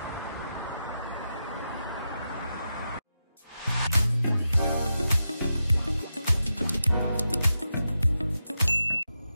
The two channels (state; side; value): inverted; both; correlation -0.88